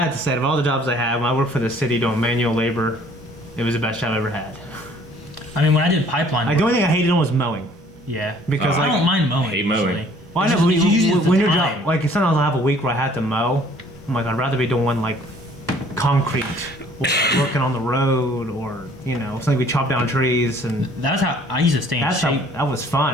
have to say, of all the jobs I had, when I worked for the city doing manual labor, it was the best job I ever had. I mean, when I did pipeline Like, work, the only thing I hated on was mowing. yeah, Because, I like, don't mind mowing. hate mowing. usually. Well, I It's know, just- but it's usually when the your time. job, like sometimes I'll have a week where I had to mow. I'm like, I'd rather be doing like concrete, or working on the road, or something we chop down trees, and That's how I used to stay in that's shape. that was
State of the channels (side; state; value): both; normal; correlation 0.57